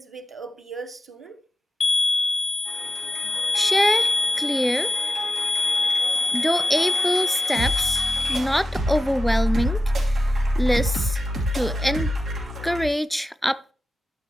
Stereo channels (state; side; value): normal; both; correlation 0.90